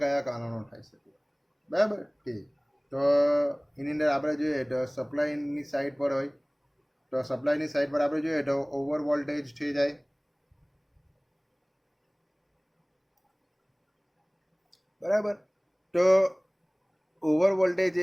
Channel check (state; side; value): identical; both; correlation 1.00